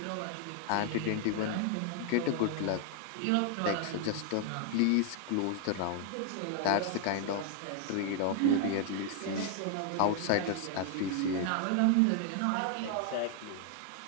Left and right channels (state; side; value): different; both; correlation 0.00